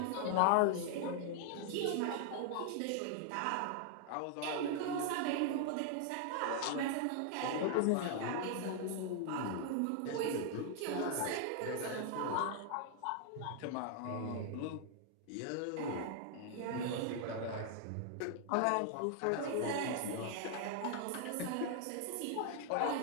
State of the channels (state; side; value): different; both; correlation 0.00